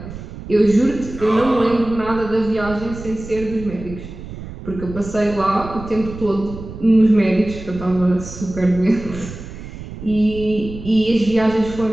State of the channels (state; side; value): noise; right; rumble, 12 dB below the sound